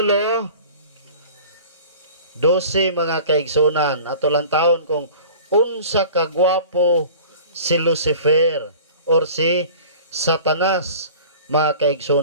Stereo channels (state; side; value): inverted; both; correlation -0.43